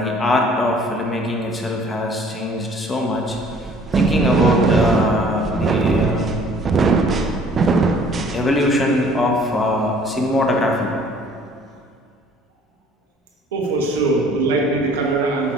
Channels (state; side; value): normal; both; correlation 0.54